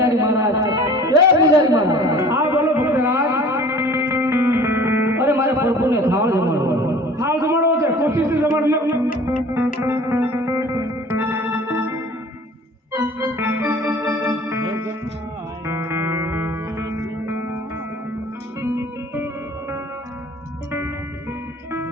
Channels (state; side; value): normal; both; correlation 0.46